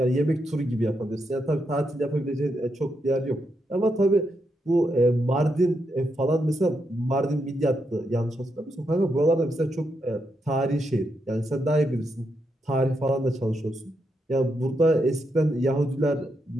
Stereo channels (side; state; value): both; normal; correlation 0.82